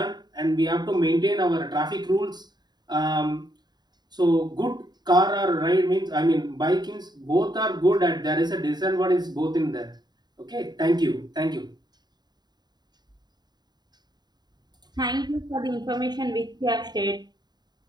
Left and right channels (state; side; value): late; left; 0.20 ms